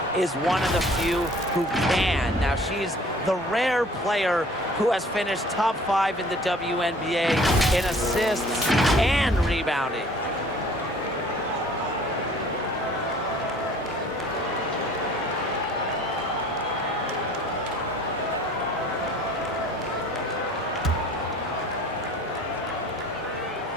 is one of the few who can. Now, she's the rare player who has finished top 5 in the WNBA in assists and rebounding.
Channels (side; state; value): both; normal; correlation 0.51